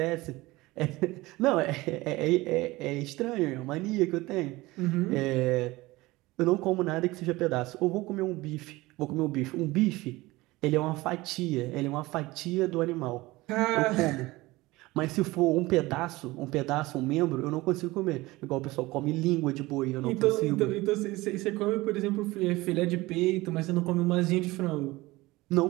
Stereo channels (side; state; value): left; quieter; 20.2 dB